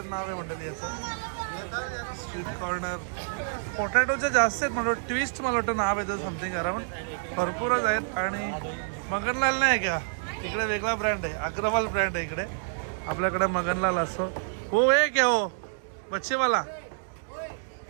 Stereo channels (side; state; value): left; silent; 59 dB below the other